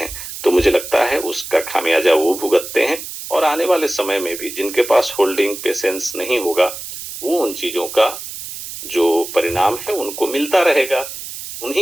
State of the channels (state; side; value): noise; right; hiss, 10 dB below the sound